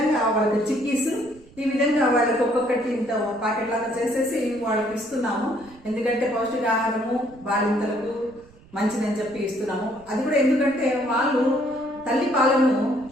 వాళ్ళకి చిక్కీస్, ఈ విధంగా వాళ్ళకి ఒక్కొక్కటి ఇంత ప్యాకెట్ లాగా చేసేసి వాళ్ళకి ఇస్తున్నాము. ఎందుకంటే పౌష్టికాహారము బాలింతలకు మంచిదని చెప్పి ఇస్తున్నాము. అది కూడా ఎందుకంటే వాళ్ళు తల్లి పాలను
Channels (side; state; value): right; noise; rumble, 25 dB below the sound